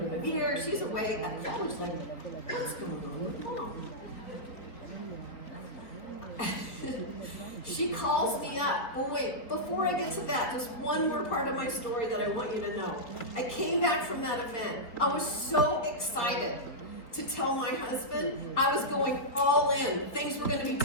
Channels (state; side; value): late; right; 3.9 ms